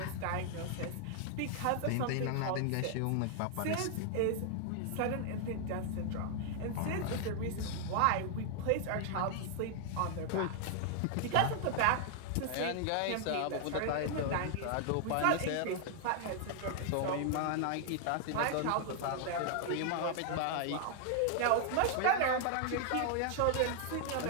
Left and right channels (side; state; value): both; different; correlation 0.00